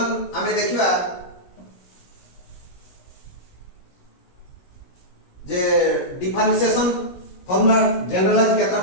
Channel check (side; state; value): right; late; 16 ms